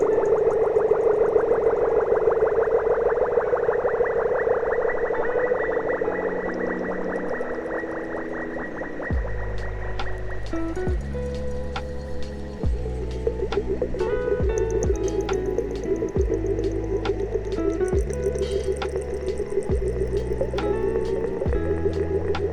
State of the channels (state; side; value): identical; both; correlation 1.00